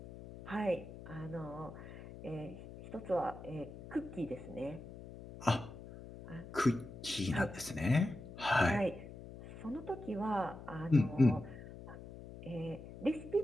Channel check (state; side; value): noise; left; hum, 14 dB below the sound